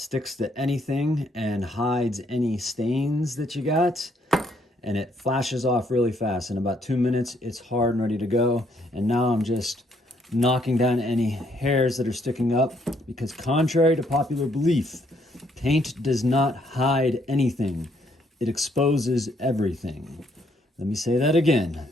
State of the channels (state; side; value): normal; both; correlation 0.70